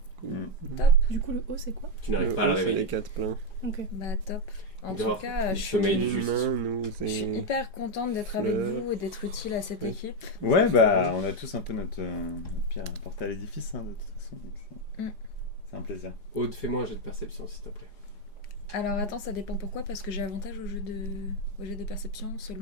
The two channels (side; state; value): right; late; 4.9 ms